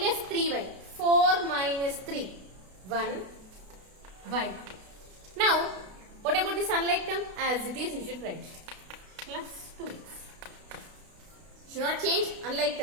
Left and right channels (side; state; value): left; late; 32 ms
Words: 3y. 4 minus 3. 1y. Now what about this unlike term? As it is you should write. Plus 2x. Should not change unlike